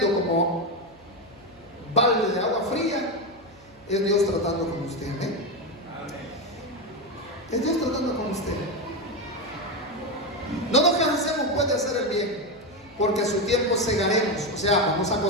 como balde de agua fría, es Dios tratando con usted. ¿eh? Es Dios tratando con usted. No nos cansemos pues de hacer el bien, porque a su tiempo segaremos. O sea, vamos a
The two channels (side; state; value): left; noise; hum, 27 dB below the sound